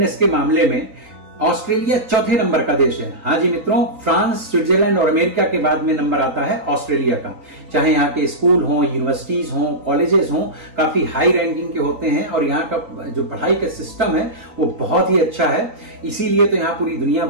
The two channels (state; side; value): late; left; 3.9 ms